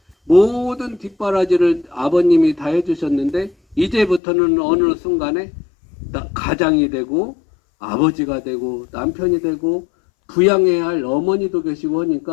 모든 뒷바라지를 아버님이 다 해주셨는데 이제부터는 어느 순간에 가장이 되고 아버지가 되고 남편이 되고 부양해야 할 어머니도 계시고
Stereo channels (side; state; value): right; drops out; at 4.2 s